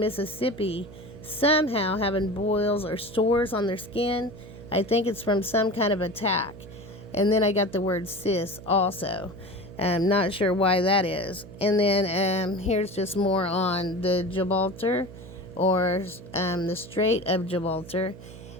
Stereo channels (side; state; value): right; noise; hum, 16 dB below the sound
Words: somehow having boils or sores on their skin. I think it's from some kind of attack. And then I got the word sis also. I'm not sure why that is. And then here's just more on the Gilbraltar, or the Strait of Gibraltar.